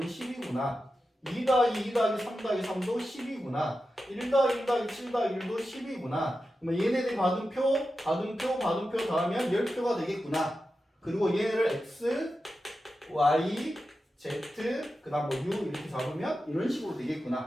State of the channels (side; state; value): both; normal; correlation 0.91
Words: 10이구나. 2 더하기 2 더하기 3 더하기 3도 10이구나. 1 더하기 1 더하기 7 더하기 1도 10이구나. 그러면 얘네들이 받은 표 더하면 10표가 되겠구나. 그리고 얘네를 X, Y, Z, 그 다음 U 이렇게 잡으면 이런 식으로